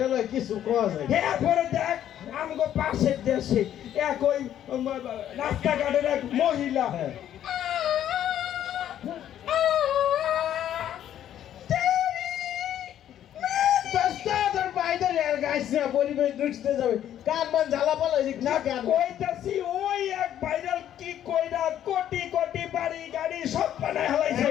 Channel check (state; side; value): quieter; right; 10.9 dB